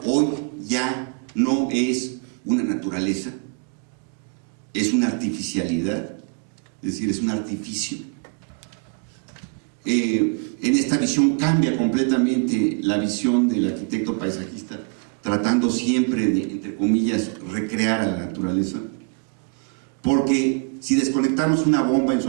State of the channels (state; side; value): quieter; left; 37.6 dB